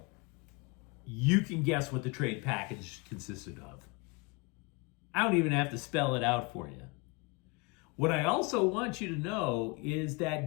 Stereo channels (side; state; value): right; quieter; 27.8 dB